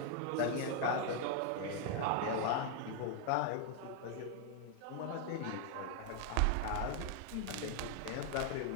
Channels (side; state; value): both; different; correlation 0.00